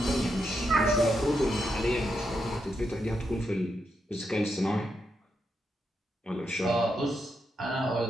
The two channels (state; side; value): normal; both; correlation 0.83